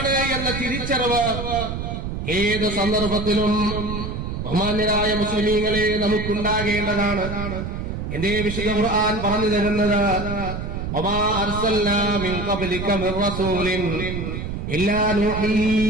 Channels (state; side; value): noise; right; rumble, 5 dB below the sound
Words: എന്ന തിരിച്ചറിവ് ഏത് സന്ദർഭത്തിലും ബഹുമാന്യരായ മുസ്ലിമീങ്ങളെ നമുക്കുണ്ടാകേണ്ടതാണ്. എന്റെ വിശുദ്ധ ഖുർആൻ പറഞ്ഞു തരുന്നത്, വമാ അർസൽനാ മിൻ ഖബ്ലിക മിർ റസൂലിൻ ഇല്ലാ നൂഹി